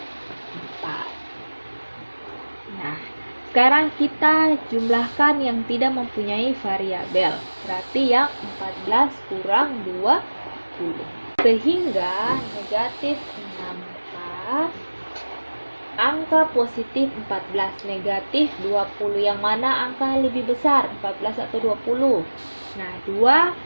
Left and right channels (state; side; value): inverted; both; correlation -1.00